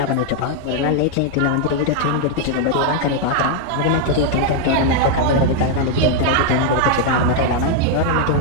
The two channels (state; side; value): different; both; correlation 0.00